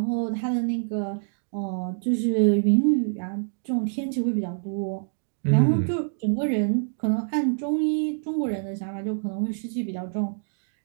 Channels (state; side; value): silent; left; digital silence